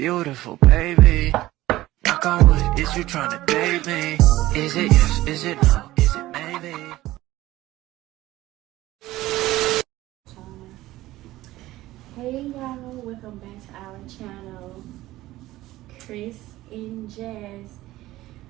baby. Knock on wood, is you trying to date me? Is it yes, is it no, is it maybe? Hey y'all, welcome back to our channel, Chris and Jazz.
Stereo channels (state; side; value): quieter; left; 16.5 dB